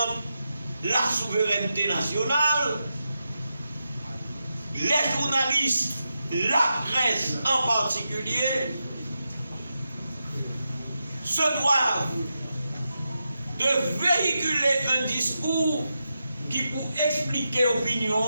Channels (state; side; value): inverted; both; correlation -0.88